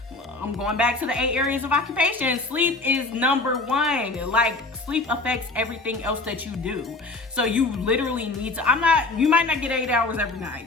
I'm going back to the 8 areas of occupation. Sleep is number 1. Like, sleep affects everything else that you do. So you literally need to, you might not get 8 hours every night.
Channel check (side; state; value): right; quieter; 3.3 dB